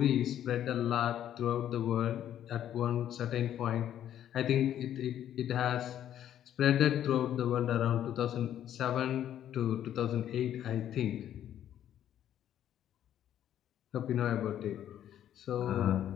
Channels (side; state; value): right; quieter; 10.9 dB